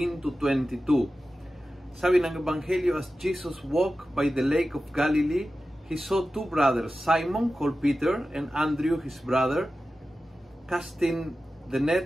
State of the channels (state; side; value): normal; both; correlation 0.94